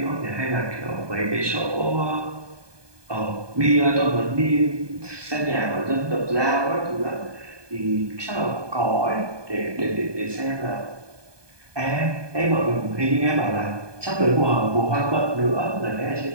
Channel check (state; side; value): late; left; 1.2 ms